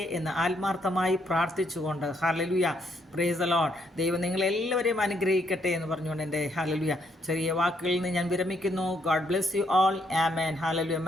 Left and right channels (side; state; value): both; normal; correlation 0.73